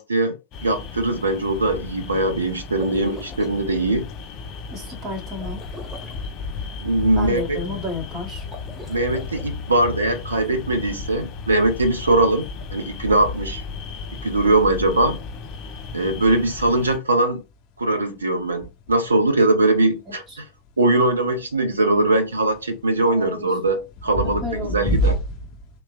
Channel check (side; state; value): both; inverted; correlation -0.55